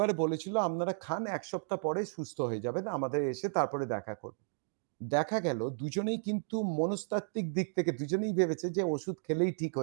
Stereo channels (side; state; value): left; silent; digital silence